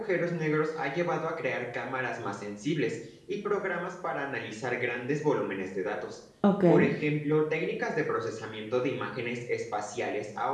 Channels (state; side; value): identical; both; correlation 1.00